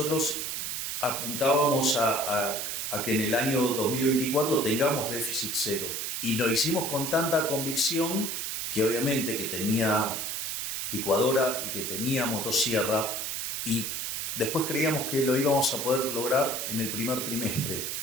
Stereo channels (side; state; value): right; noise; hiss, 3 dB below the sound